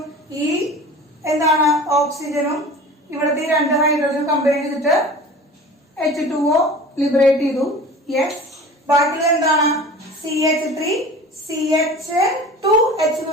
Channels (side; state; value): both; normal; correlation 0.39